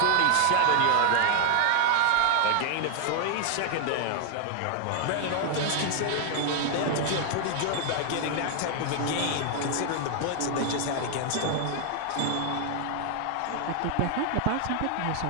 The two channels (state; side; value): different; both; correlation 0.00